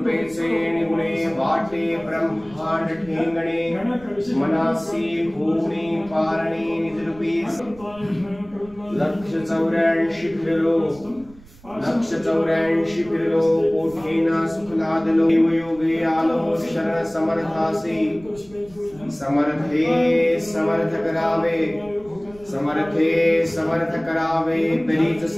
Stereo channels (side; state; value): right; noise; rumble, 23 dB below the sound